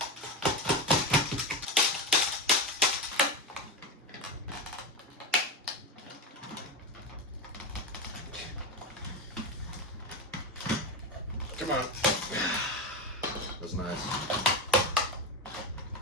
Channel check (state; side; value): normal; both; correlation 0.18